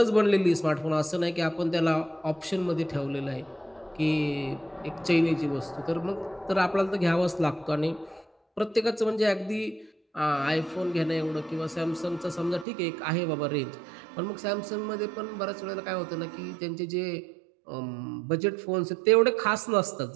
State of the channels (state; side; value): drops out; left; at 12.7 s